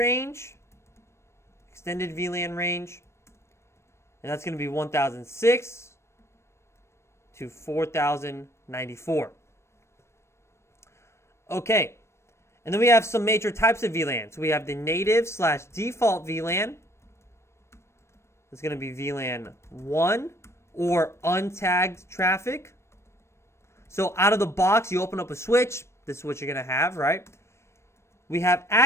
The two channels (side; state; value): right; late; 0.13 ms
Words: extended VLAN range, and that's going to be 1006 to 4094. Okay, and then we have some major types of VLANs. We have the native/default VLAN. It's going to be VLAN 1 or untagged traffic. So out of the box, you open up a switch. This is what you're going to have, right? We have